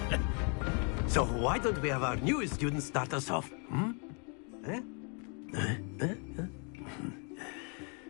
So why don't we have our newest student start us off?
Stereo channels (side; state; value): right; quieter; 37.7 dB